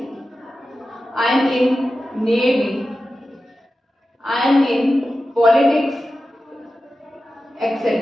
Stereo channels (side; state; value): both; normal; correlation 0.93